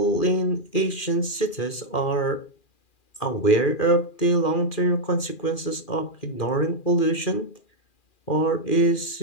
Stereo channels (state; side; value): late; right; 2.4 ms